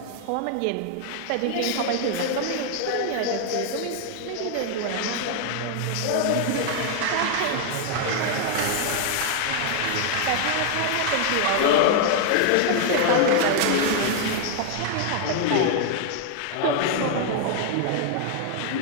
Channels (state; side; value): different; both; correlation 0.00